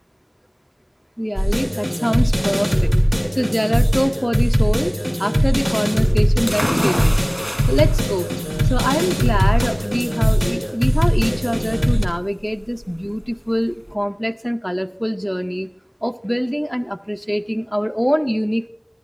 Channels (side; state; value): both; identical; correlation 1.00